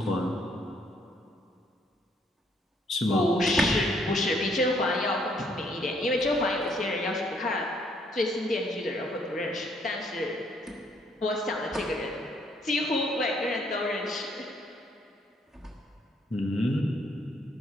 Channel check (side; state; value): both; normal; correlation 0.67